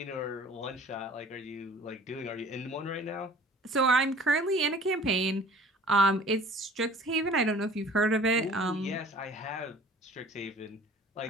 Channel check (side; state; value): both; normal; correlation 0.48